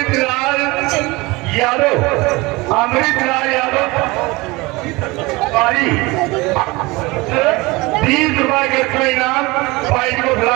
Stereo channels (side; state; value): left; quieter; 23.0 dB